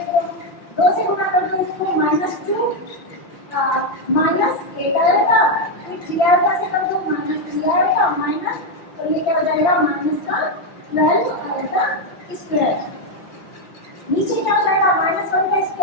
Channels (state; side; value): late; right; 5.9 ms